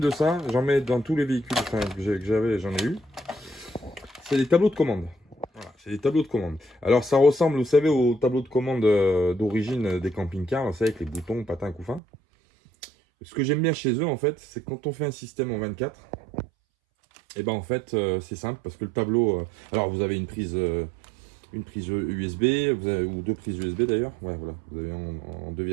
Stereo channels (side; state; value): left; drops out; at 12.0 s